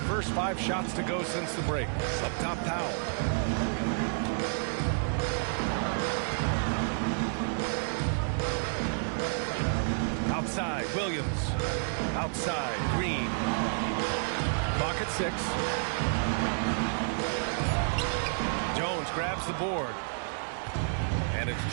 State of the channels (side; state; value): left; silent; digital silence